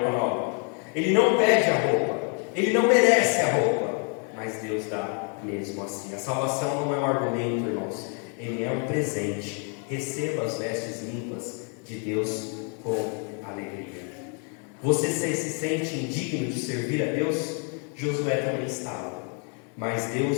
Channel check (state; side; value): quieter; right; 39.2 dB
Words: nova. Ele não pede a roupa, ele não merece a roupa, mas Deus dá mesmo assim. A salvação não é um argumento, irmãos, ele é um presente. Receba as vestes limpas de Deus com alegria. Você se sente indigno de servir a Deus? Josué também estava, mas